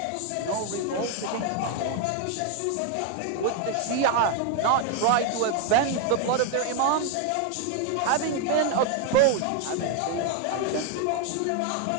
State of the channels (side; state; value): both; different; correlation 0.01